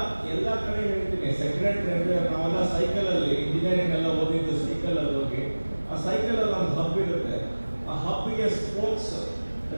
ಎಲ್ಲಾ ಕಡೆ ಹೇಳ್ತೀನಿ. ಸೆಕ್ರೆಟರಿ ಅಂದ್ರೆ ನಾವೆಲ್ಲ ಸೈಕಲ್ ಅಲ್ಲಿ ಇಂಜಿನಿಯರಿಂಗ್ ಎಲ್ಲ ಓದಿದ್ದು ಸೈಕಲ್ ಅಲ್ಲಿ ಹೋಗಿ, ಆ ಸೈಕಲ್ ಅಲ್ಲಿ ಒಂದು ಹಬ್ ಇರುತ್ತೆ. ಆ ಹಬ್ಗೆ ಸ್ಪೋಕ್ಸ್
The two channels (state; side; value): inverted; both; correlation -1.00